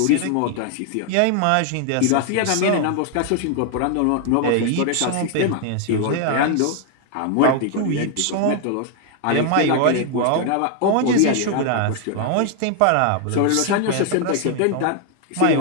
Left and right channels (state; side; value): different; both; correlation 0.00